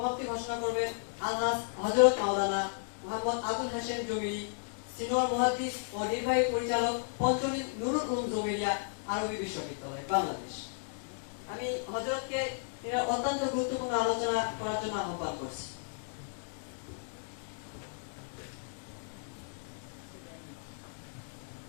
সমাপ্তি ঘোষণা করবেন আলহাজ হযরত মাওলানা মোহাম্মদ আবুল হাশেম জমিরি, সিনিয়র মুহাদ্দিস ও নির্বাহী পরিচালক পঞ্চনীত নুরুল উলুম জমিরিয়া আরবি বিশ্ববিদ্যালয় বাংলাদেশ। আমি হযরতকে এর অত্যন্ত গুরুত্বপূর্ণ আলোচনা করার জন্য আহ্বান করছি।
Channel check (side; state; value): right; silent; digital silence